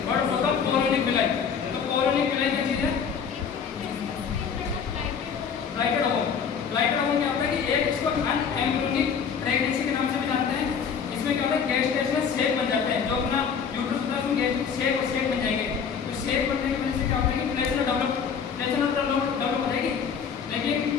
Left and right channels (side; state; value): right; quieter; 6.8 dB